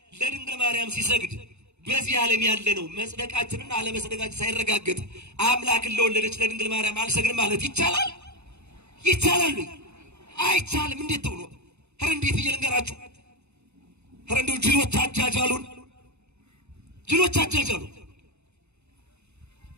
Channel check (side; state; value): left; late; 0.81 ms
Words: ለድንግል ማርያም ሲሰግድ በዚህ ዓለም ያለ ነው መጽደቃችንና አለመጽደቃችን ሳይረጋገጥ አምላክን ለወለደች ለድንግል ማርያም አልሰግድም ማለት ይቻላል? ይቻላል? አይቻልም። እንዴት ተብሎ ኧረ እንዴት ብዬ ልንገራችሁ? ኧረ እንደው ጅሎች አጃጃሉን፣ ጅሎች አጃጃሉ።